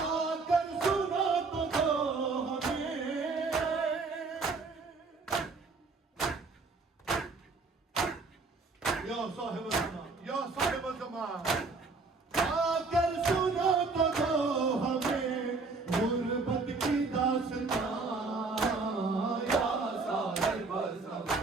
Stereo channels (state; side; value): quieter; left; 4.0 dB